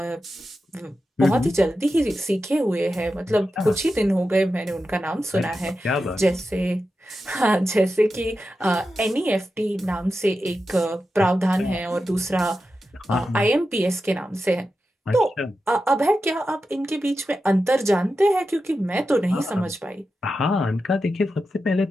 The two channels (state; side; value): normal; both; correlation 0.91